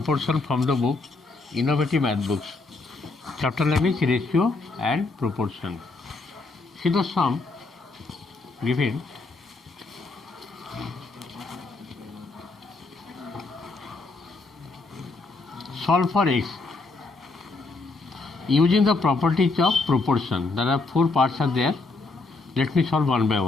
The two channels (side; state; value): right; quieter; 3.6 dB